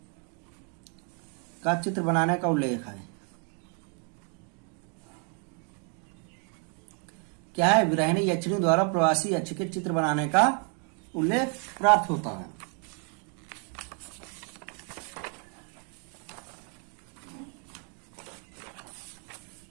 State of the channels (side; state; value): left; quieter; 39.5 dB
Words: का चित्र बनाने का उल्लेख है। क्या है, विराहिणी यक्षिणी द्वारा प्रवासी यक्ष के चित्र बनाने का उल्लेख प्राप्त होता है।